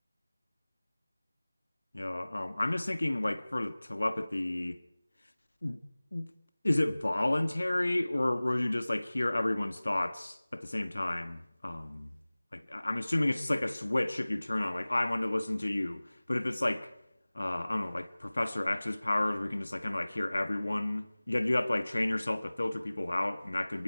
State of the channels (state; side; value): inverted; both; correlation -1.00